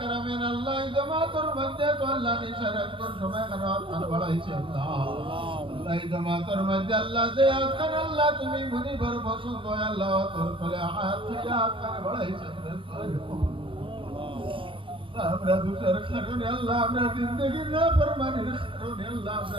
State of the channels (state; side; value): late; left; 0.25 ms